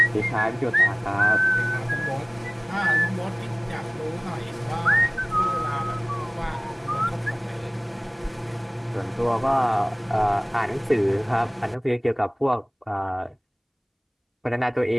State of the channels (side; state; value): both; identical; correlation 1.00